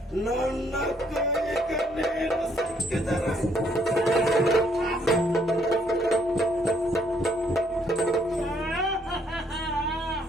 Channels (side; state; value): both; normal; correlation 0.68